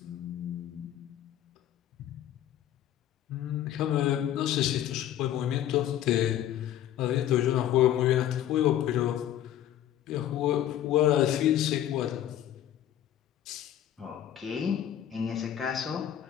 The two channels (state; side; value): quieter; right; 11.5 dB